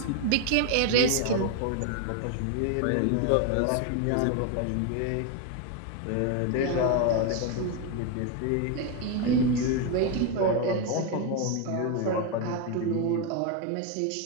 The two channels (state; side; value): different; both; correlation 0.01